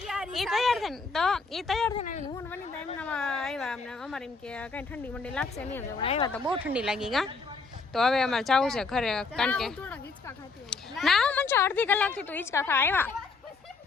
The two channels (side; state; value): right; quieter; 4.3 dB